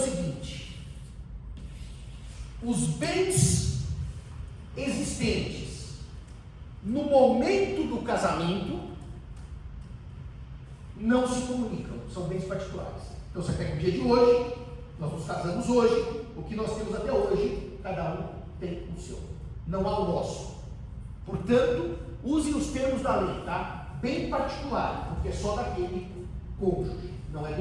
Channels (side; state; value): both; identical; correlation 1.00